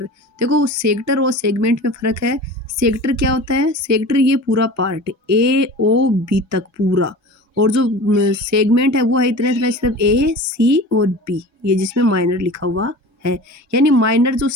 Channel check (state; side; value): normal; both; correlation 0.36